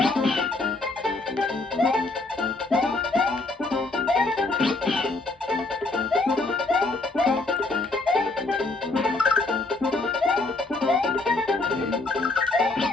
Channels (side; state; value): right; quieter; 3.2 dB